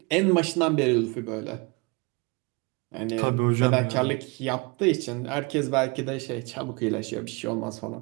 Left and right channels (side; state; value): left; quieter; 28.4 dB